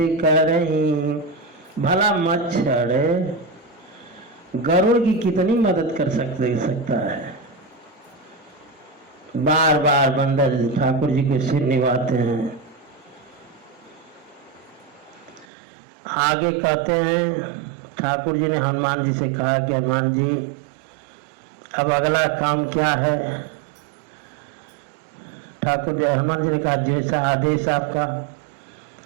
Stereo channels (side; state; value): left; drops out; at 15.5 s